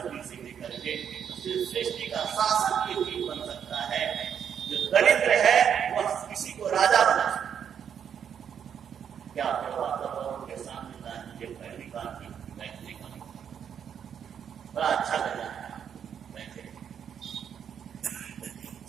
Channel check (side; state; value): left; quieter; 8.2 dB